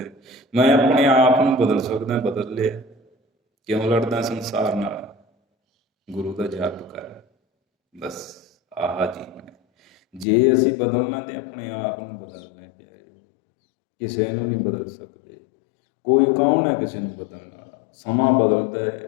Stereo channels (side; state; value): right; drops out; at 10.2 s